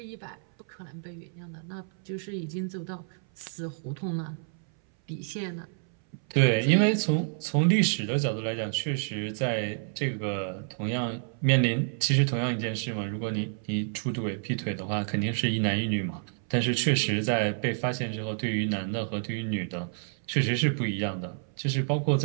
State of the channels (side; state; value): left; silent; 59 dB below the other